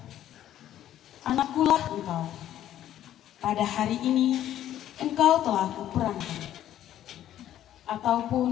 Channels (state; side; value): quieter; right; 11.9 dB